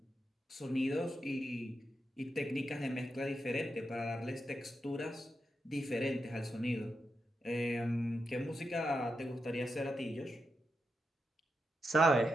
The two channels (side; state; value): both; normal; correlation 0.86